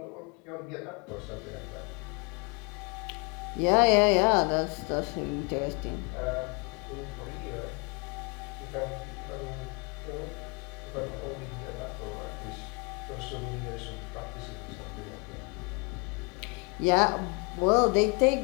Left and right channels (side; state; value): right; quieter; 31.2 dB